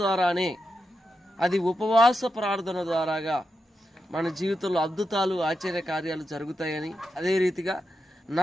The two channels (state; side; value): normal; both; correlation 0.87